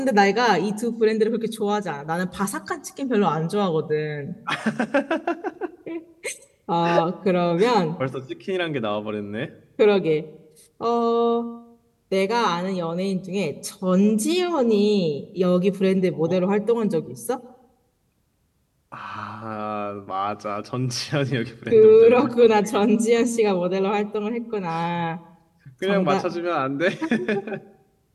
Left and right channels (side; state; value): both; identical; correlation 1.00